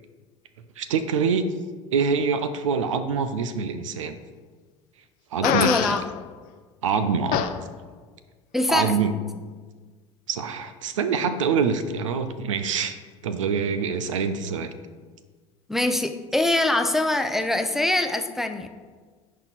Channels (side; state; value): both; normal; correlation 0.28